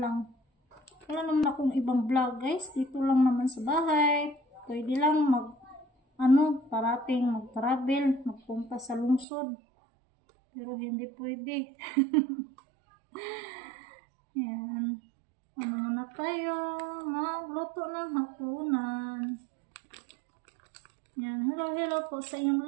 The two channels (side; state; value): left; drops out; at 9.2 s